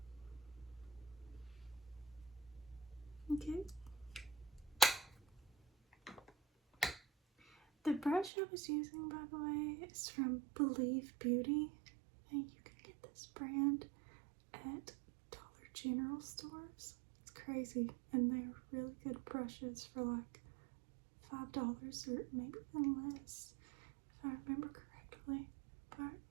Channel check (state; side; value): drops out; left; at 8.3 s